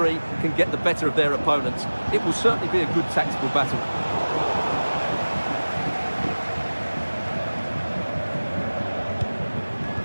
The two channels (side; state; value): both; inverted; correlation -1.00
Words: can get the better of their opponents. It will certainly be a good tactical battle.